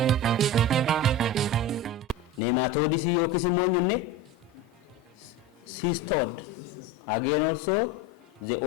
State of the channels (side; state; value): both; normal; correlation 0.27